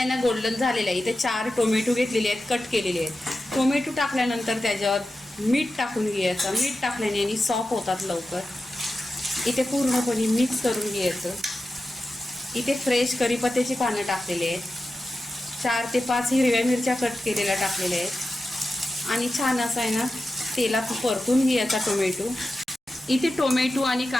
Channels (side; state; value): both; normal; correlation 0.92